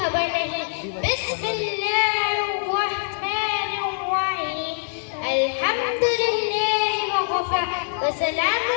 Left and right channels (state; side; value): silent; right; digital silence